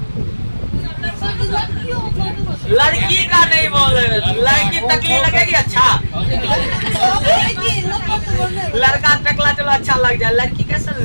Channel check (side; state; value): both; inverted; correlation -1.00